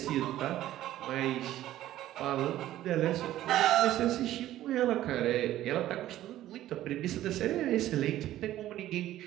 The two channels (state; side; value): quieter; left; 13.7 dB